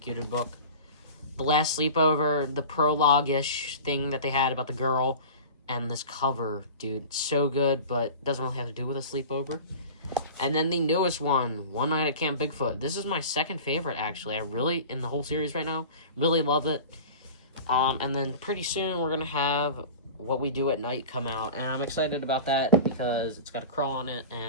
book. The Last Sleepover, the prologue-ish thing that they had about the girl, and this cover, dude, so good, but doesn't really have to do with a sleepover. And then the newest one, One Night at Camp Bigfoot. This is my second favorite, actually. I really, in the whole series right now, really love it. And then pretty soon we're going to have What We Do at Night come out. And I'm excited about that because it's got a crawl on it,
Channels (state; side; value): inverted; both; correlation -0.36